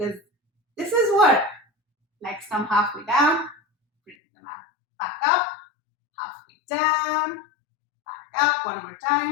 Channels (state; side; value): drops out; right; at 4.2 s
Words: this is work. Legs come halfway down, bring them back up, halfway down, back up, one more